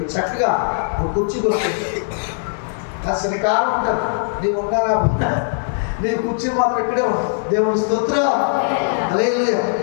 చక్కగా ఒక కుర్చీ కొడుతుంది. అది శనికాలం ఉంటుంది. నీవు ఉన్నారా? నీ కుర్చీ మాత్రం ఇక్కడే ఉంటుంది. దేవుని స్తోత్రం. హల్లెలూయా.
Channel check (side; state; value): right; silent; digital silence